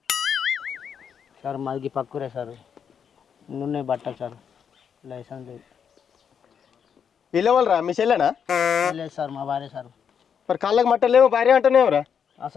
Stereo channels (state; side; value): quieter; right; 7.4 dB